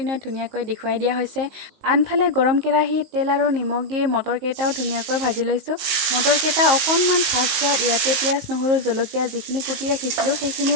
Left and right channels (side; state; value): left; late; 19 ms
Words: ধুনীয়াকৈ দেখুৱাই দিয়া হৈছে। আনফালে গৰম কেৰাহীত তেল আৰু নিমখ দি মটৰকেইটাও ধুনীয়াকৈ ভাজি লৈছোঁ। মটৰকেইটা অকণমান ভাজ খোৱাত ইয়াতে পিঁয়াজ, নহৰু, জলকীয়া যিখিনি কুটি ৰাখিছিলোঁ